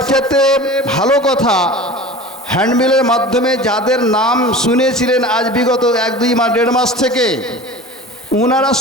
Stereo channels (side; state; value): both; normal; correlation 0.37